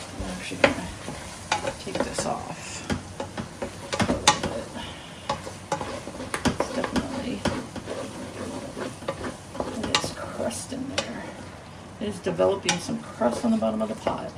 actually gonna take this off. It's definitely, it is crust in there. It is developing some crust on the bottom of the pot,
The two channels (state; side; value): identical; both; correlation 1.00